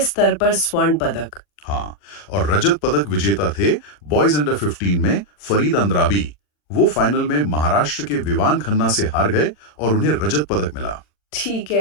पर स्वर्ण पदक। हाँ, और रजत पदक विजेता थे बॉयज अंडर 15 में फरीद अंद्राबी। वो फाइनल में महाराष्ट्र के विवान खन्ना से हार गए और उन्हें रजत पदक मिला। ठीक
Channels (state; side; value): late; right; 40 ms